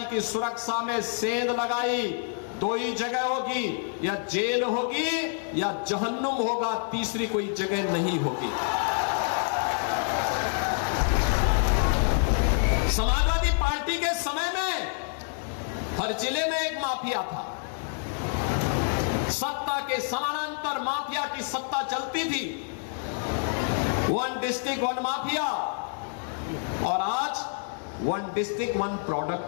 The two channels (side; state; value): right; silent; 60 dB below the other